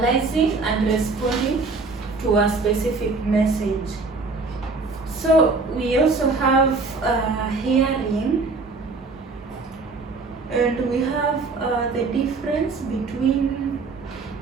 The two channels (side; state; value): left; quieter; 4.0 dB